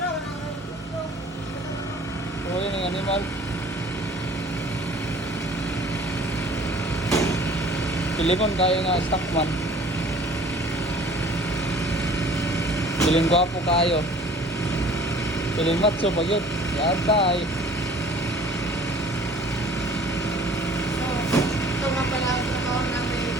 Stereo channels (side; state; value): both; normal; correlation 0.50